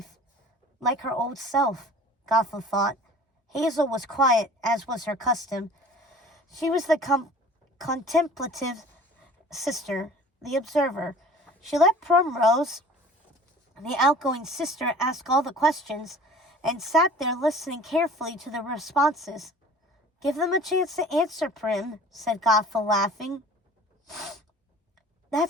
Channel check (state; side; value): normal; both; correlation 0.46